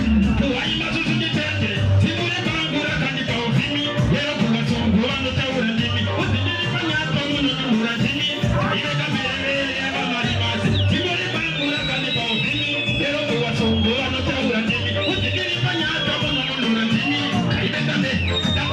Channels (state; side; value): identical; both; correlation 1.00